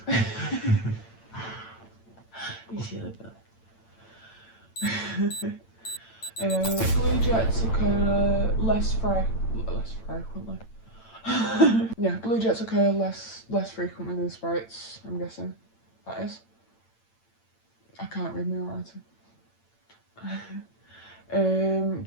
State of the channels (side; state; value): right; late; 8.9 ms